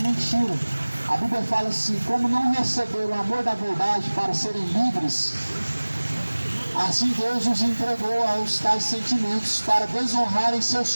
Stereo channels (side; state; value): both; inverted; correlation -1.00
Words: A Bíblia fala assim: como não receberam o amor da verdade para serem livres, assim Deus os entregou aos tais sentimentos para desonrarem